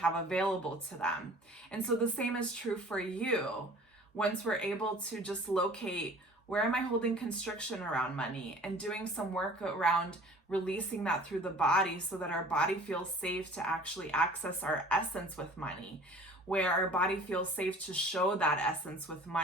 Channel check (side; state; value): both; normal; correlation 0.47